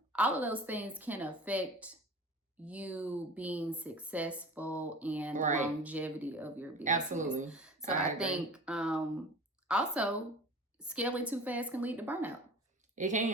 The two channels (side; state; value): both; normal; correlation 0.39